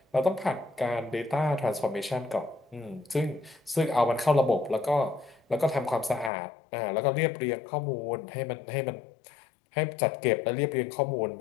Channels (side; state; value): right; drops out; at 6.3 s